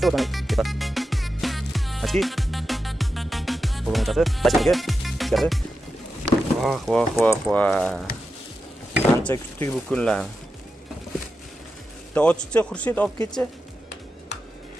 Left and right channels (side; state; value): both; normal; correlation 0.90